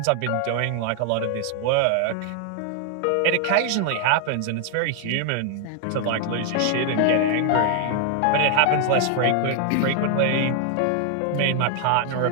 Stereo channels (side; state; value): both; different; correlation 0.00